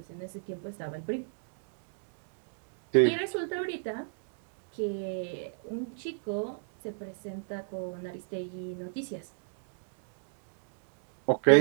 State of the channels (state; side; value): silent; left; digital silence